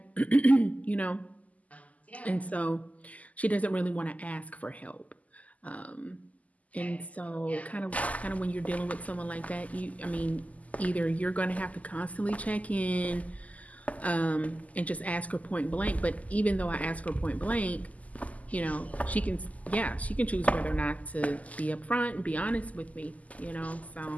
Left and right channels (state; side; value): late; right; 0.074 ms